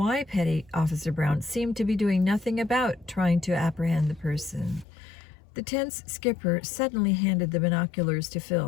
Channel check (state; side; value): drops out; right; at 4.9 s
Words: Petty Officer Brown seemed to be doing nothing about trying to apprehend the person. The tense skipper suddenly handed the binoculars to